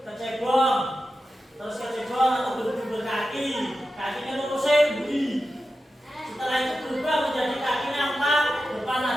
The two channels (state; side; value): normal; both; correlation 0.91